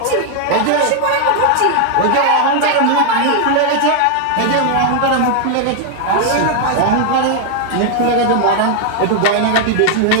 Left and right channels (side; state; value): both; different; correlation 0.00